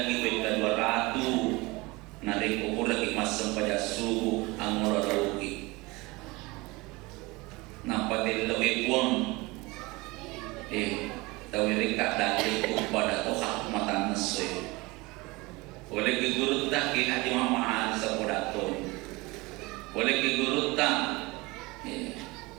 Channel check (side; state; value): left; quieter; 23.6 dB